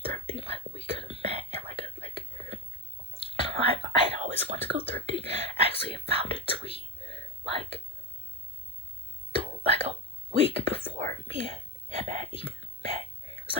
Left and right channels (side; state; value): both; normal; correlation 0.18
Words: thrifting, like, we could have met, and like I don't know, I had always wanted to go thrifting. Actually, I found a tweet like a week before me and him had even met. It was